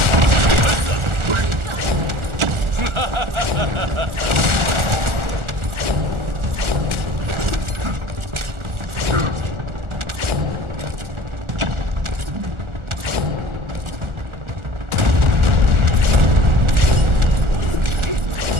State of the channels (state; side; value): late; left; 1.4 ms